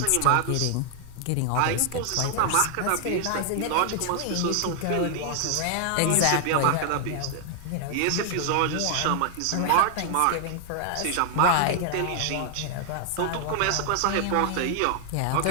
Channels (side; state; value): both; different; correlation 0.00